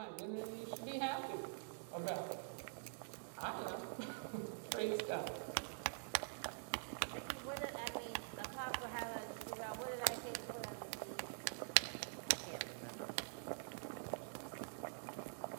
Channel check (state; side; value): silent; left; digital silence